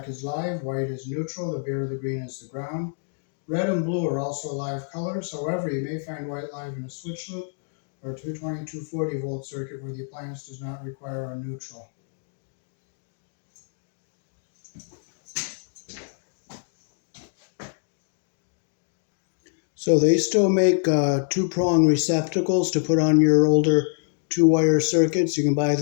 is live, white is neutral, the bare, the green is the ground. Red and blue are also live colors. However, you may find white live in a switch loop or a 220, 240 volt circuit where the appliance does not require a neutral. So they still make two-prong receptacles to put on your older two-wire circuits. You can buy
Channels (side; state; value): right; silent; 61 dB below the other